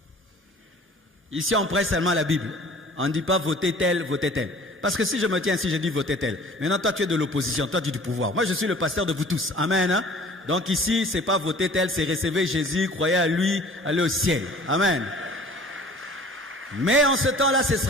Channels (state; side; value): normal; both; correlation 0.48